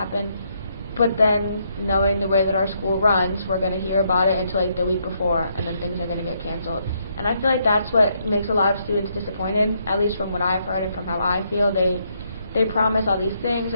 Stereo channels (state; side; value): inverted; both; correlation -0.75